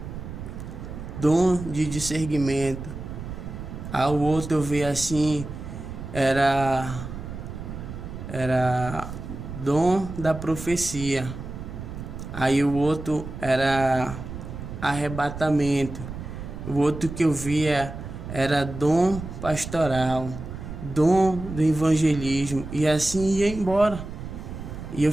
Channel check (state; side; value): noise; right; rumble, 9 dB below the sound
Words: dom de discernimento. Aí o outro eu via assim, era dom da profecia. Aí o outro era arrebatamento. O outro que eu via era dom pastoral, dom do evangelismo. E assim ia embora. E eu